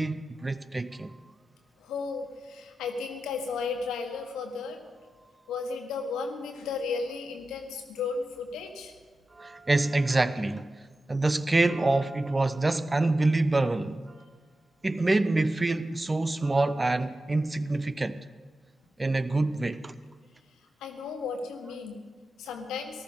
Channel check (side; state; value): both; normal; correlation 0.93